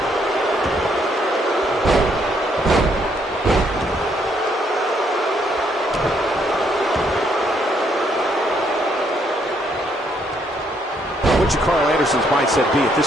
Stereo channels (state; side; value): normal; both; correlation 0.71